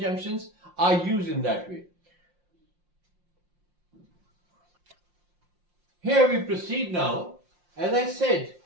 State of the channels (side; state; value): left; late; 5.7 ms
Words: are used in that way. Here we proceed now. As I said,